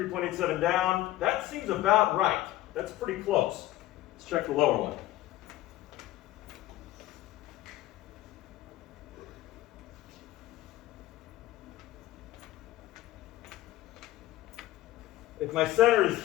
down, that seems about right. That's pretty close. Let's check the lower one. If my center is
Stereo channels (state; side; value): quieter; right; 15.5 dB